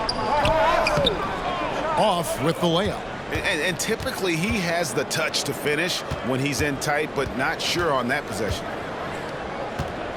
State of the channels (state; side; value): identical; both; correlation 1.00